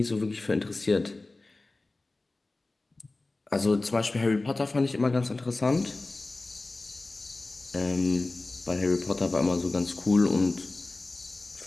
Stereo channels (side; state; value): right; quieter; 3.2 dB